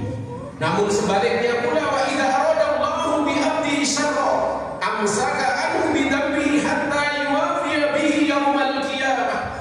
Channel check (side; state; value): both; identical; correlation 1.00